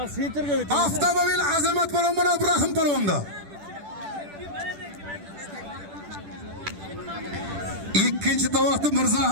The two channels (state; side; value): late; left; 10 ms